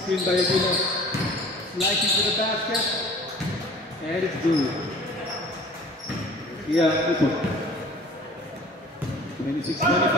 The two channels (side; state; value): both; normal; correlation 0.46